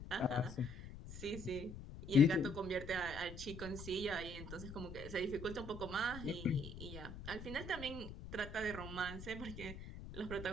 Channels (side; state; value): left; noise; rumble, 11 dB below the sound